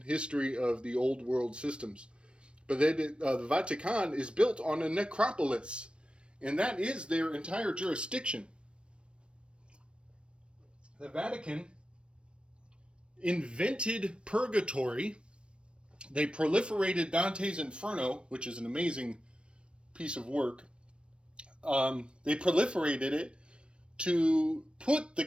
history of the old world systems. But the Vatican is built on a necropolis, and that is their entire jurisdiction. The Vatican invented purgatory. They proliferated Dante's Inferno, which is an amazing piece of work. They proliferated it to put the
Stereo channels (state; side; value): late; left; 0.058 ms